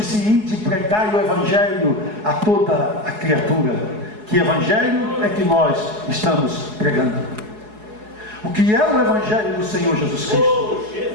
ide pregai o Evangelho a toda a criatura. Que Evangelho é que nós estamos pregando? O que é o Evangelho do Senhor Jesus Cristo?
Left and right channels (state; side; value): late; left; 4.7 ms